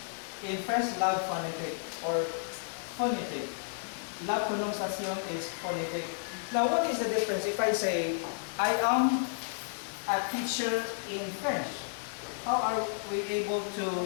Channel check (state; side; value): silent; right; digital silence